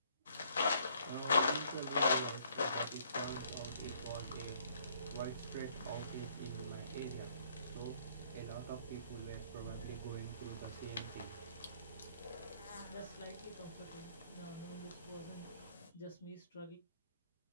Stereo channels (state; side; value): inverted; both; correlation -0.64